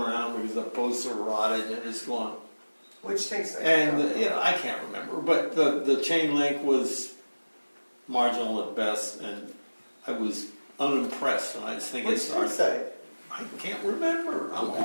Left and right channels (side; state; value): both; inverted; correlation -1.00